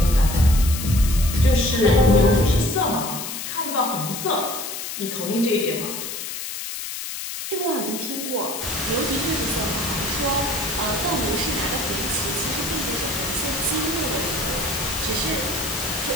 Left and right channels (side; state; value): left; noise; hiss, 6 dB below the sound